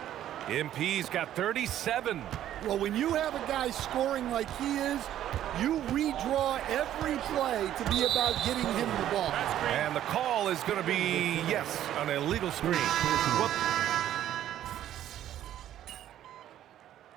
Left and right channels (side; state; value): left; quieter; 11.8 dB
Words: MP's got 37. Well, when you have a guy scoring like he is, you redraw every play to be about getting him the ball. And the call is going to be, yes, an illegal screen. Well,